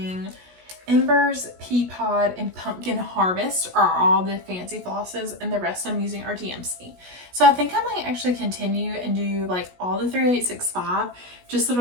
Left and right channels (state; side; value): late; left; 16 ms